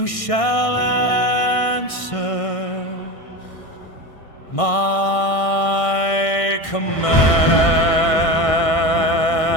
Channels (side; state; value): right; late; 1.6 ms